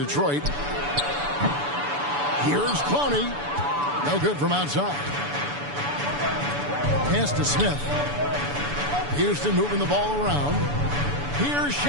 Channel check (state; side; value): late; left; 6.9 ms